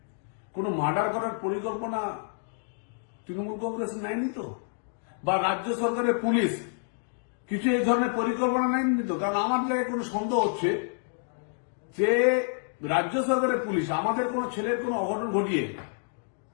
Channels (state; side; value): silent; right; digital silence